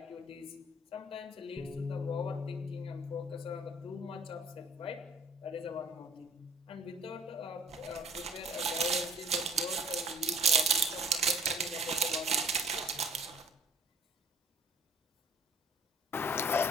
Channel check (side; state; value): both; normal; correlation 0.51